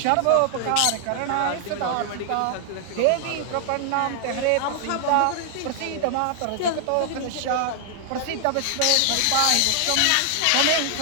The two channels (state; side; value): different; both; correlation 0.00